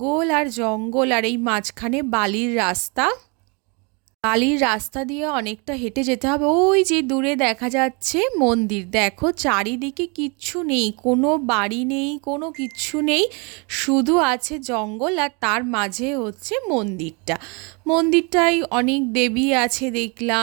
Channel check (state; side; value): quieter; left; 31.8 dB